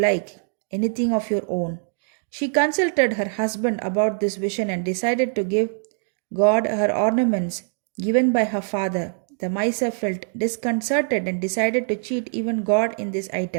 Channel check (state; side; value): silent; left; digital silence